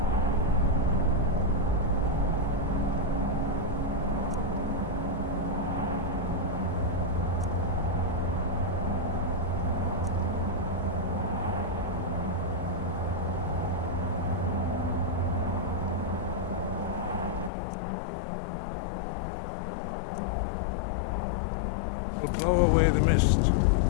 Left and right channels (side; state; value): right; drops out; at 17.5 s